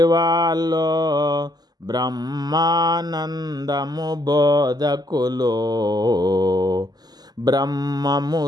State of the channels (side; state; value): left; late; 0.20 ms